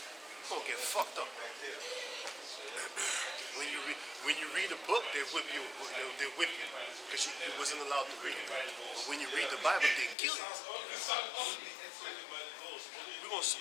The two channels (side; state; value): right; drops out; at 10.2 s